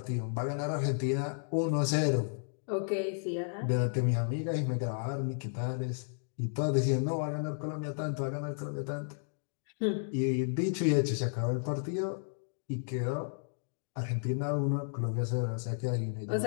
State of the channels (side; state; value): right; silent; digital silence